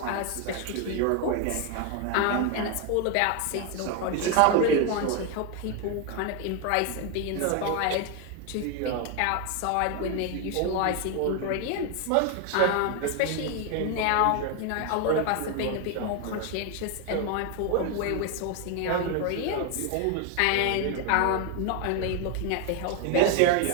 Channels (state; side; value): different; both; correlation 0.01